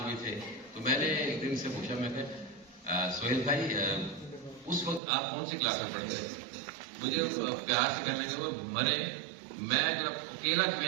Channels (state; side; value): drops out; left; at 5.0 s